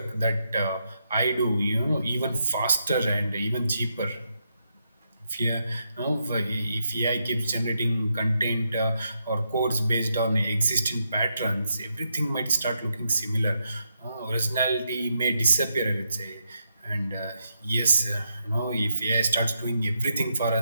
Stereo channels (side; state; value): both; inverted; correlation -0.82